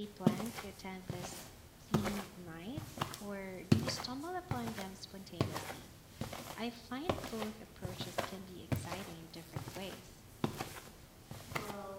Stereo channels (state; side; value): identical; both; correlation 1.00